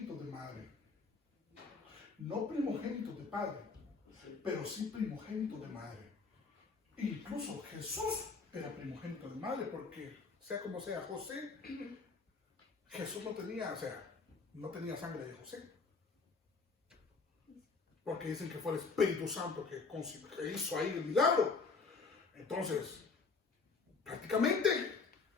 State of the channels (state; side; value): quieter; right; 4.5 dB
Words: de madre. No primogénitos de padre, pero sí primogénitos de madre. Incluso Jesús era primogénito de madre, porque sea como sea José, Jesús no tenía sangre de José. Porque dicen que fue el Espíritu Santo que hizo ahí el milagro. Entonces, prácticamente,